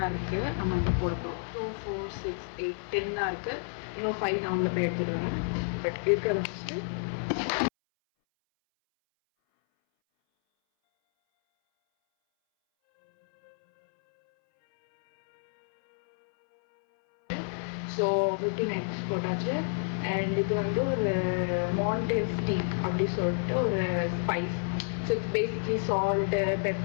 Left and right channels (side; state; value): right; silent; 58 dB below the other